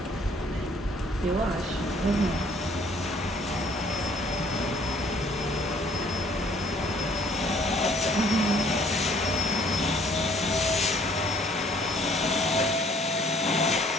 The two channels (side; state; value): both; normal; correlation 0.60